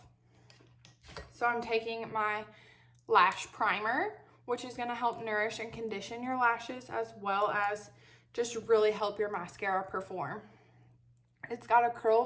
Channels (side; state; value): both; identical; correlation 1.00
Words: So I'm taking my lash primer, which is going to help nourish and condition your lashes as well as just really help your mascara perform. It's got a